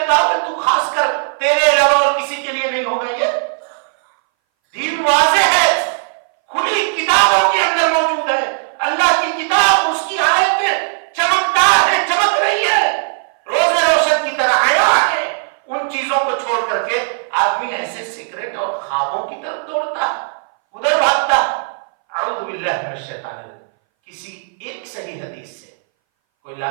کہا کہ تو خاص کر تیرے علاوہ اور کسی کے لیے نہیں ہوگا؟ یہ دین واضح ہے، کھلی کتابوں کے اندر موجود ہے۔ اللہ کی کتاب، اس کی آیتیں چمکدار ہے، چمک رہی ہے، روز روشن کی طرح آیا ہے۔ ان چیزوں کو چھوڑ کر کے آدمی ایسے سیکرٹ اور خوابوں کی طرف دوڑتا، ادھر بھاگتا۔ اعوذ باللہ من الشیطان الرجیم۔ کسی ایک صحیح حدیث سے کوئی لا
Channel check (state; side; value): silent; left; 62 dB below the other